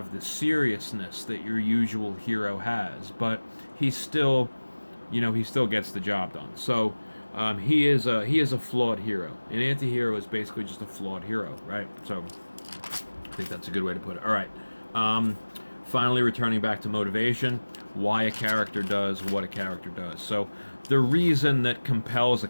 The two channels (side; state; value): both; inverted; correlation -1.00